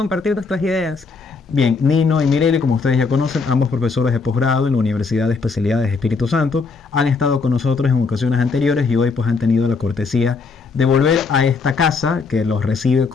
nuestras ideas. Bien, Nino y Mireli, como ustedes ya conocen, ambos profesores de posgrado en la Universidad de Especialidades Espíritu Santo, han estado con nosotros en ocasiones anteriores y hoy pues han tenido la cortesía de volver a esta casa que los recibe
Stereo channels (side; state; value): right; quieter; 4.5 dB